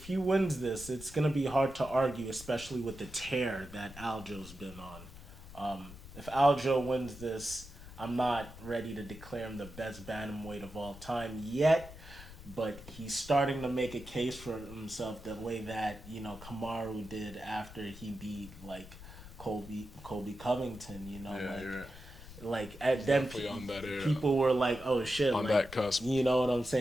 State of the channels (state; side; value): noise; left; rumble, 16 dB below the sound